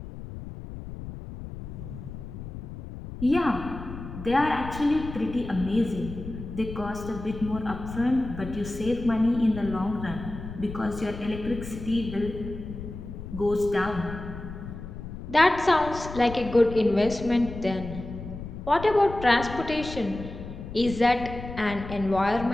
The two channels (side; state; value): left; noise; rumble, 10 dB below the sound